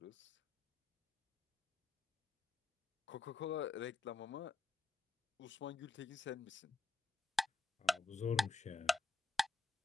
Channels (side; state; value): right; quieter; 3.2 dB